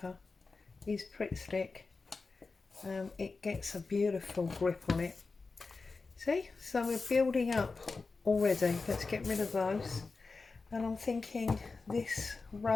is Pritt stick. It gets a beautiful grip on it. See, so we're building up already. Let's get rid of those, and I'm thinking this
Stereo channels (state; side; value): quieter; right; 4.1 dB